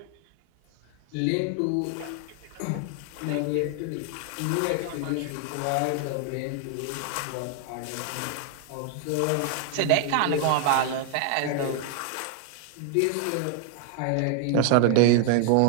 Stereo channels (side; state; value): both; different; correlation 0.00